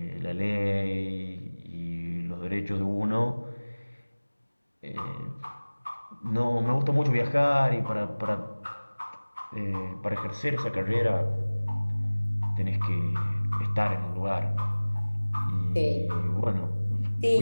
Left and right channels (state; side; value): inverted; both; correlation -1.00